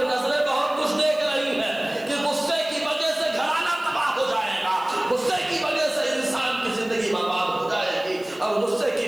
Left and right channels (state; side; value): noise; right; hiss, 25 dB below the sound